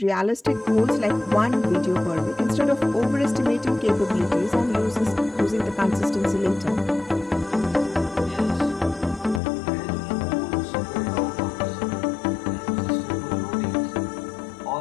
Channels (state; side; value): drops out; right; at 9.4 s